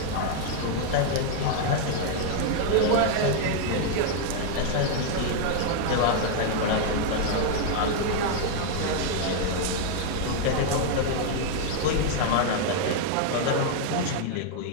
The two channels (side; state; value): both; different; correlation 0.00